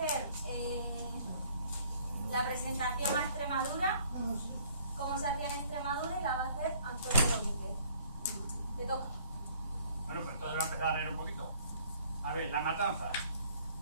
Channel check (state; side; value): inverted; both; correlation -0.58